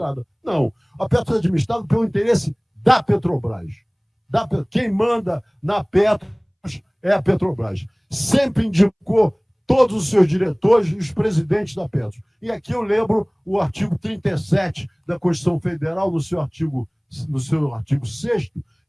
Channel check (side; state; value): both; identical; correlation 1.00